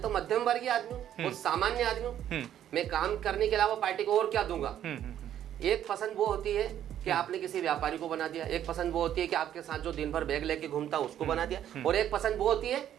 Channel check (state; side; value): quieter; left; 10.8 dB